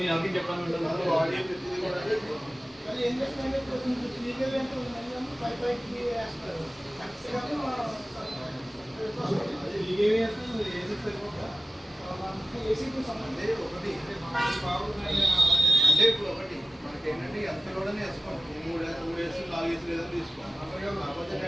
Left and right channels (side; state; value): both; normal; correlation 0.97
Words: అంటే ఇప్పుడు ఒకటి మనకి ఏంటంటే ఎంతలోనే వేసుకోండి. 3 వేసు 4 వేసు లేదని తీసుకోండి. కాకపోతే